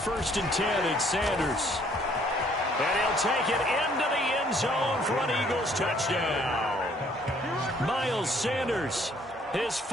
and 10, it's Sanders. And he'll take it into the end zone for an Eagles touchdown. Miles Sanders, his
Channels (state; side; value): normal; both; correlation 0.62